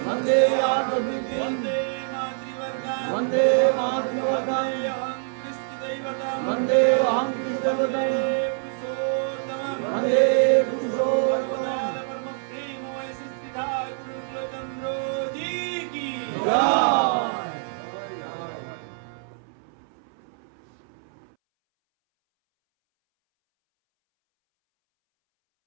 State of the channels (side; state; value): left; silent; 61 dB below the other